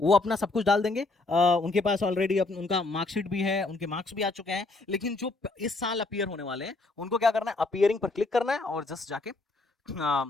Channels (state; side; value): quieter; right; 3.3 dB